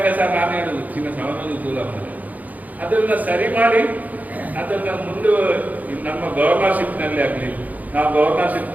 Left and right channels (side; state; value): left; late; 0.078 ms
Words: ಸಹ ನಾನು ಹೇಳುದು ಚಿನ್ನ ಸವನೊಂದು ದೂರ ಮಾಡಿ ಅದನ್ನ ಸರಿ ಮಾಡಿ ಅದನ್ನ ಮುಂದೆ ನಮ್ಮ ಗವರ್ನರ್ಶಿಪ್ನಲ್ಲಿ ಆಗಲಿ ನಾವು